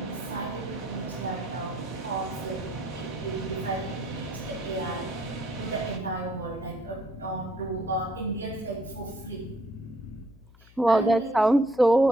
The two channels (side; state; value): left; noise; hum, 24 dB below the sound